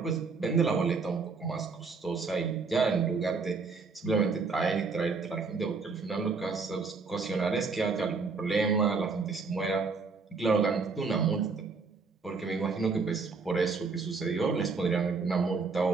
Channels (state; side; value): quieter; left; 4.6 dB